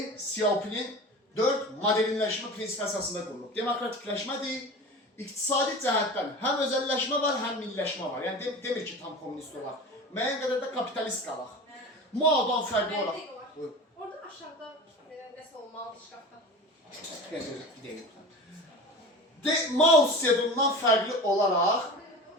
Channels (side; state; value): both; normal; correlation 0.34